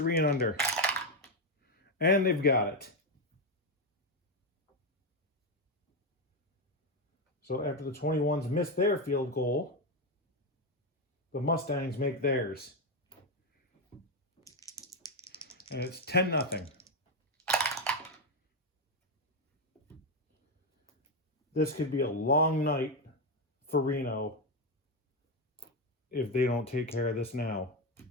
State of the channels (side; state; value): both; normal; correlation 0.08